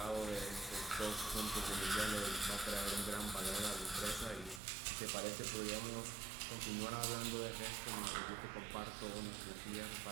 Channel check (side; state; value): left; drops out; at 4.6 s